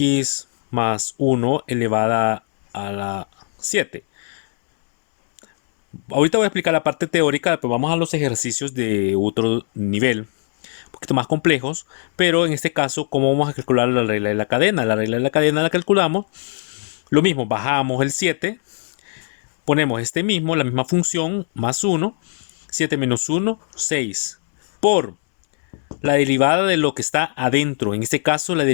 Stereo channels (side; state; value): right; silent; 66 dB below the other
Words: más 1 elevada a la 7. Ahorita voy a explicar la parte teórica, pero vamos a los ejercicios de otro nivel, un poquito más complejos, pero en este caso, ¿cómo vamos a calcular la regla de la cadena? La regla de la cadena la calculamos, lo mismo, bajamos el 7, ponemos la misma función, más 1, 7 menos 1, 6, por la derivada de lo que está adentro, en este caso la